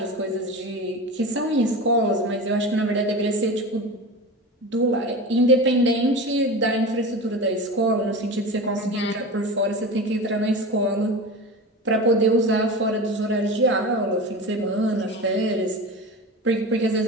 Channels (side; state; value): both; normal; correlation 0.29